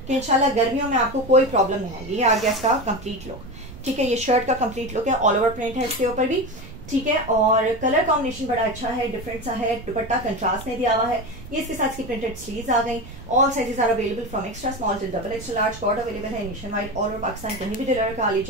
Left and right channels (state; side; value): noise; right; rumble, 17 dB below the sound